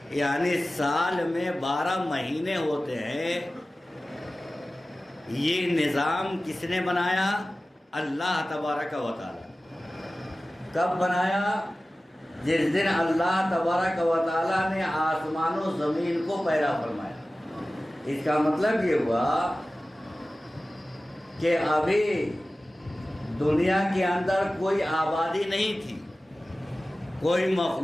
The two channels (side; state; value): both; normal; correlation 0.96